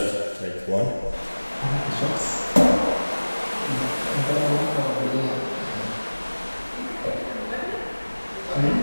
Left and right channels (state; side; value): inverted; both; correlation -1.00